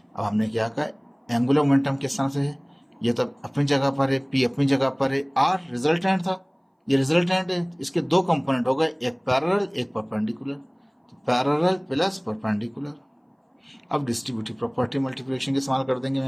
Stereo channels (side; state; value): both; identical; correlation 1.00